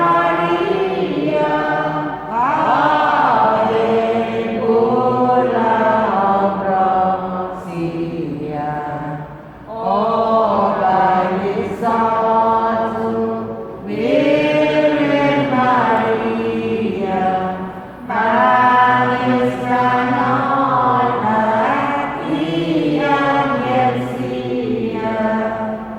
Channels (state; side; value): identical; both; correlation 1.00